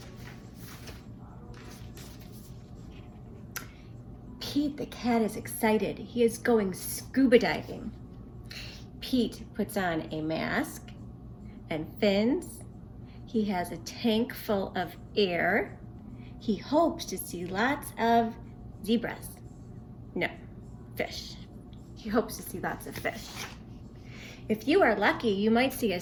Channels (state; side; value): identical; both; correlation 1.00